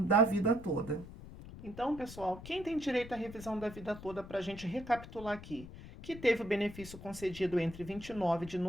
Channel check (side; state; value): left; noise; rumble, 14 dB below the sound